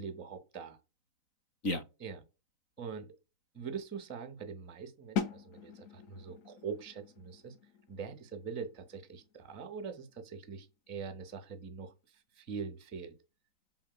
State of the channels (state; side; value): late; right; 3.9 ms